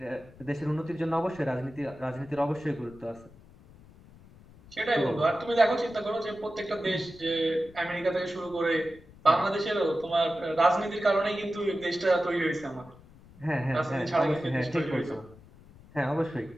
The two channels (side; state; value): left; noise; rumble, 23 dB below the sound